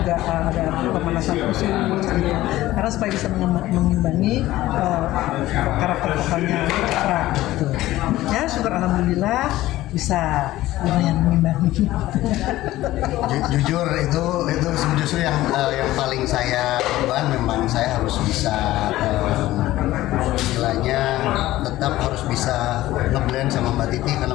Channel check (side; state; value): right; quieter; 16.0 dB